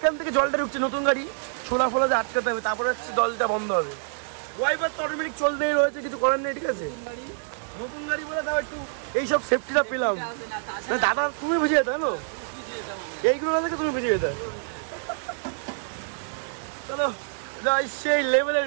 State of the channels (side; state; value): left; silent; digital silence